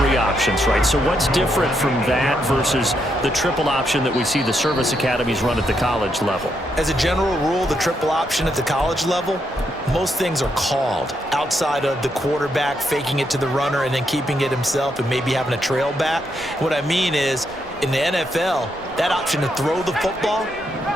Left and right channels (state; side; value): normal; both; correlation 0.79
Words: options, right? So what's different from that versus the triple option that we see the service academies run at the college level? As a general rule, the triple option at the college level, most things are called outside of the quarterback faking it to the runner and then keeping it himself and maybe having a trail back. What I mean is, in the NFL, that option to throw the football